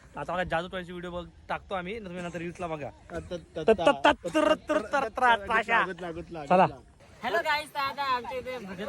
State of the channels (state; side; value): identical; both; correlation 1.00